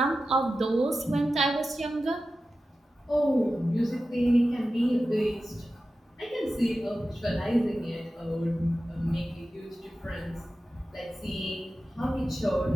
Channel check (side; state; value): both; normal; correlation 0.93